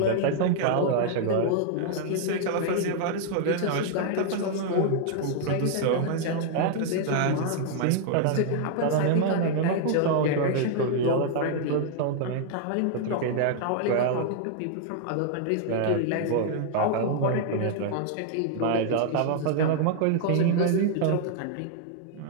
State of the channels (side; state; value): both; different; correlation 0.00